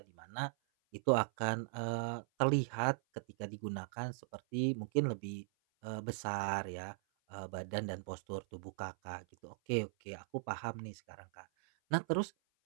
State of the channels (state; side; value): silent; left; 52 dB below the other